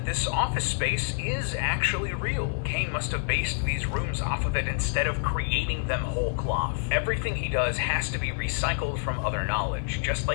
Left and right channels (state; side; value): silent; right; digital silence